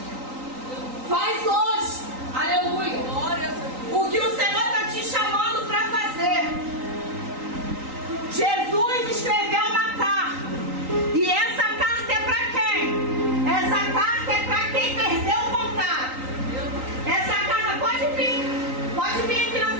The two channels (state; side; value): late; left; 3.9 ms